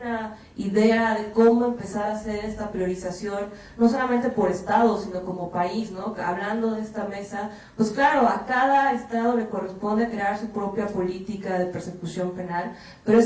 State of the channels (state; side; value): identical; both; correlation 1.00